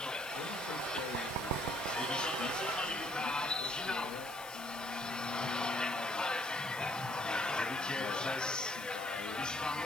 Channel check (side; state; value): left; noise; hiss, 15 dB below the sound